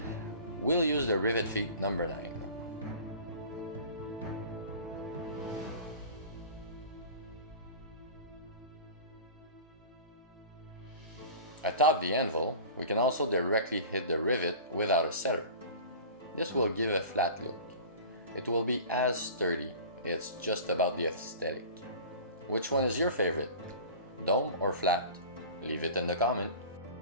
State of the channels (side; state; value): both; inverted; correlation -0.39